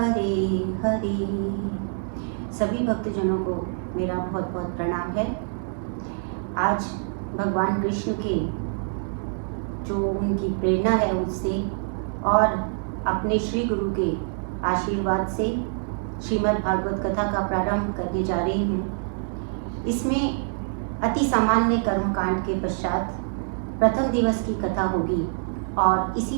हरे। सभी भक्तजनों को मेरा बहुत बहुत प्रणाम है। आज भगवान कृष्ण के जो उनकी प्रेरणा है उससे और अपने श्री गुरु के आशीर्वाद से श्रीमद् भागवत कथा का प्रारंभ करने जा रही हूँ। इसमें अति सामान्य कर्मकांड के पश्चात प्रथम दिवस की कथा होगी और इसी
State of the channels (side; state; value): left; silent; digital silence